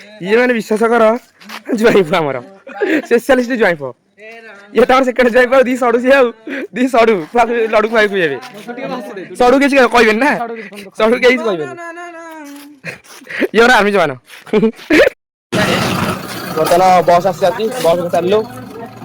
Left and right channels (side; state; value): both; identical; correlation 1.00